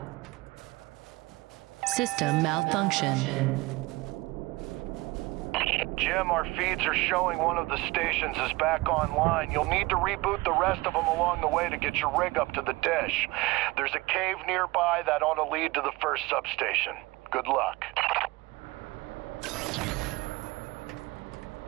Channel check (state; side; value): quieter; left; 21.8 dB